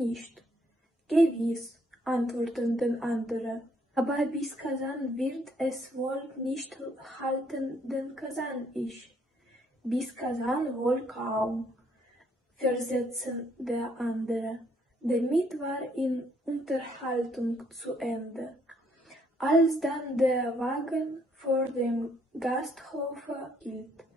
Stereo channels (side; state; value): both; normal; correlation 0.68